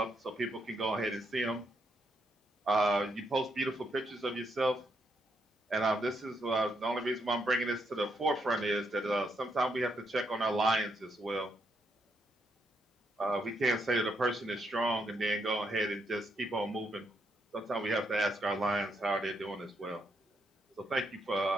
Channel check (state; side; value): normal; both; correlation 0.78